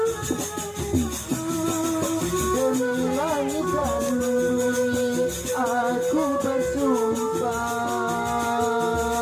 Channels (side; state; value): both; identical; correlation 1.00